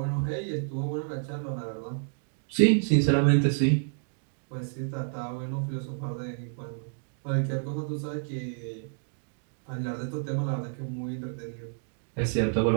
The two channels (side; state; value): left; silent; digital silence